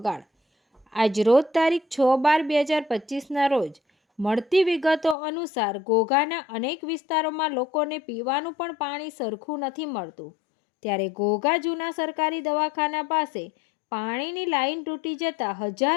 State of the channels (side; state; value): right; drops out; at 5.2 s